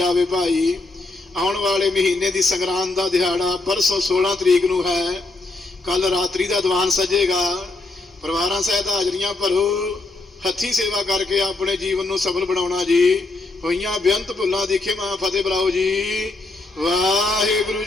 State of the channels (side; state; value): right; quieter; 3.2 dB